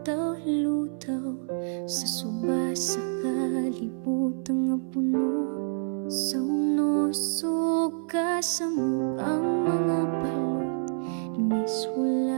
sa suba sa kalibutan nga puno sa unos ug kasamok ang mga balot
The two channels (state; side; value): silent; left; 60 dB below the other